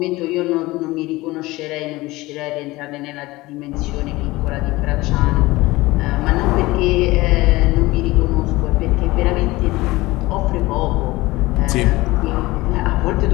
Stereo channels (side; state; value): right; quieter; 20.1 dB